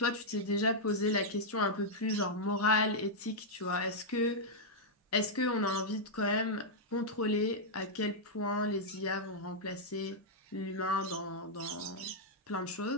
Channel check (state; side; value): normal; both; correlation -0.05